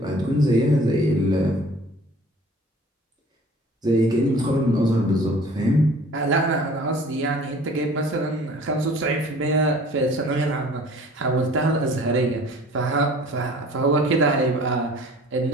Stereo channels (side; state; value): both; normal; correlation 0.49